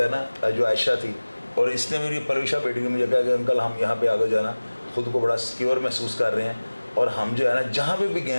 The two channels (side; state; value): both; inverted; correlation -1.00